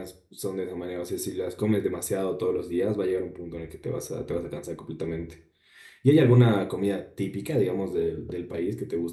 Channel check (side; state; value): both; identical; correlation 1.00